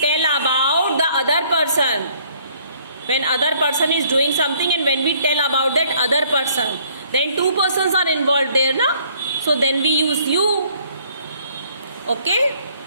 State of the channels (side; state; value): both; inverted; correlation -0.62